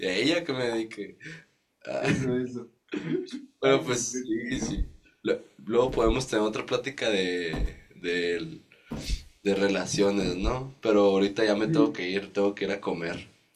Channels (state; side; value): identical; both; correlation 1.00